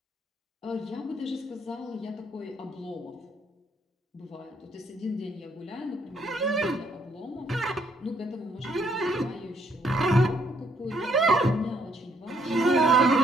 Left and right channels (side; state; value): both; normal; correlation 0.69